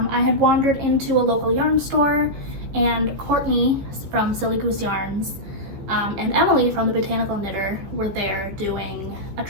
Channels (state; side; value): late; left; 15 ms